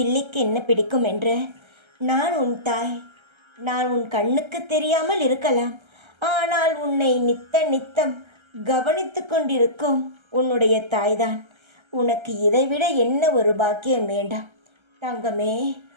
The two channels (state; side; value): late; left; 1.3 ms